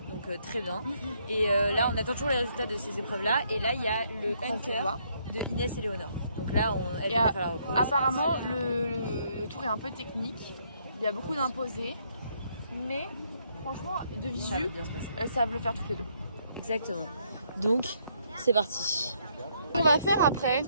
donc très bien. Et là, on attend toujours les résultats de ces épreuves-là. Et là, il y a le hunter de Inès et Léonore. Donc là, elle vient de faire la repose. Apparemment, le tour est un peu technique. Il y a beaucoup d'imposés. Mais franchement, de visu, elles savent le faire toutes les 2. Exactement. Donc, c'est parti. On va faire après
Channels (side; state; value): both; inverted; correlation -0.71